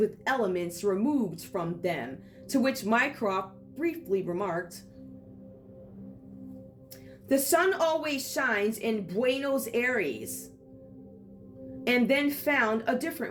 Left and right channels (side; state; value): both; identical; correlation 1.00